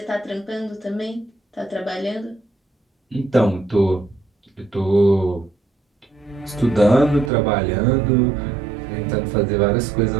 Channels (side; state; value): left; drops out; at 7.3 s